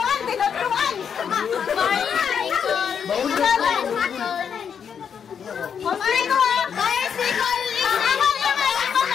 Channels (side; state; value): right; quieter; 7.4 dB